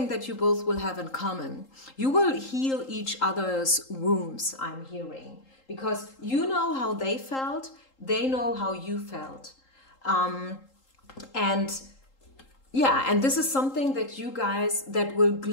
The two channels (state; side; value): late; right; 3.8 ms